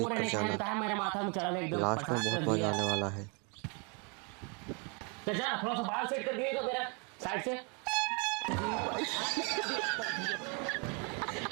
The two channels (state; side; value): quieter; left; 34.0 dB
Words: कर नहीं खाएंगे जाना। तो है, मेरे माथा में चढ़ा एकदम लास्ट में परेशान बहुत कर मजा दिया। आने वाला है। तो जा थोड़ा सा बाल सेट कर दिए तो मेरा साइड से।